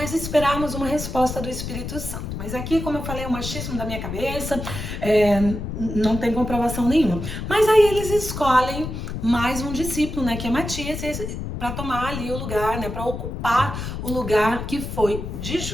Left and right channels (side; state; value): left; noise; rumble, 6 dB below the sound